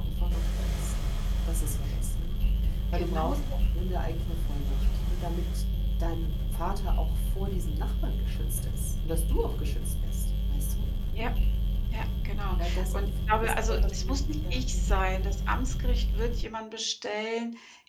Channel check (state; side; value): identical; both; correlation 1.00